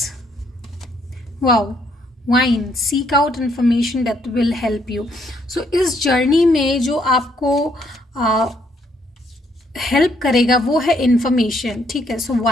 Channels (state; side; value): normal; both; correlation 0.70